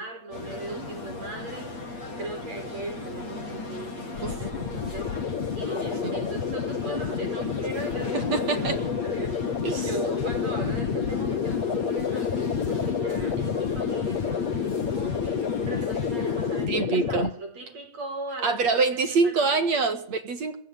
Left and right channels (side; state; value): left; late; 8.5 ms